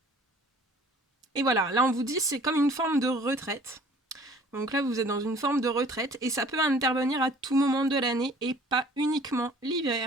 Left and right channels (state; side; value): normal; both; correlation 0.52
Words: Et voilà, là on vous dit c'est comme une forme de retraite. Donc là vous êtes dans une forme de retraite et ça peut intervenir à tout moment de l'année et pas uniquement